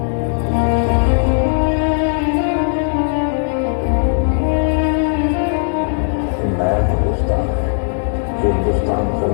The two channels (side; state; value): right; silent; digital silence